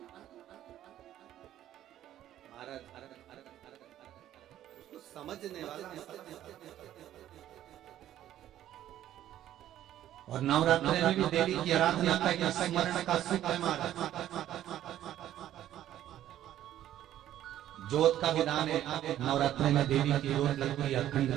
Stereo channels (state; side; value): quieter; left; 12.2 dB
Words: उसको समझने वाला। और नवरात्र में भी देवी की आराधना का स्मरण का सुख है। ज्योत का विधान है, नवरात्र में देवी की ज्योत लगती है, अखंड